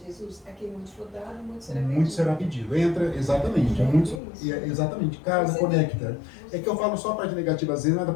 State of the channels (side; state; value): right; drops out; at 4.2 s